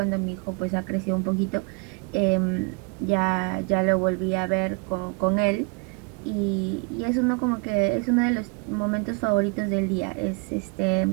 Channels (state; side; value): quieter; left; 32.6 dB